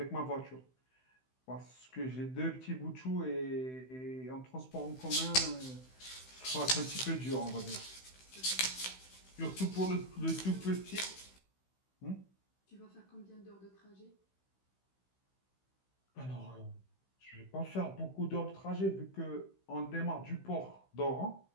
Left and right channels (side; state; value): right; late; 16 ms